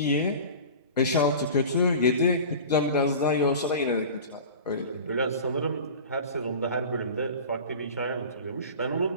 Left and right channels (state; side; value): inverted; both; correlation -0.36